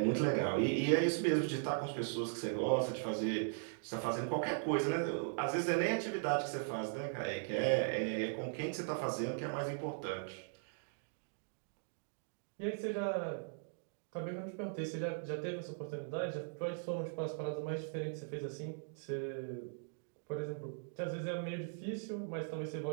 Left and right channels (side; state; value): left; silent; digital silence